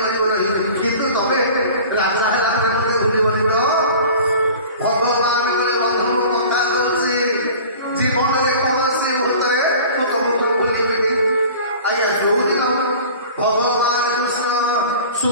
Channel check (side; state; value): both; inverted; correlation -0.42